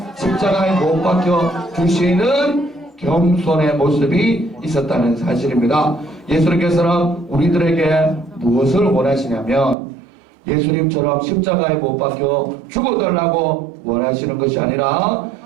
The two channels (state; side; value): drops out; left; at 9.8 s